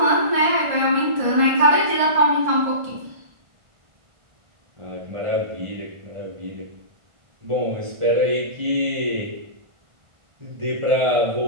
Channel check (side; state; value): left; late; 1.6 ms